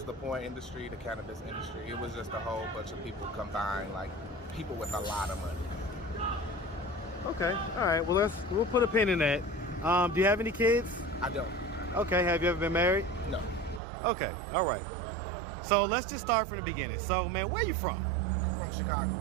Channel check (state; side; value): drops out; left; at 13.8 s